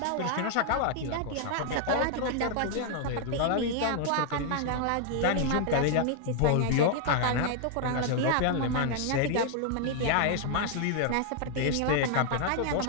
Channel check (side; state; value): both; different; correlation 0.00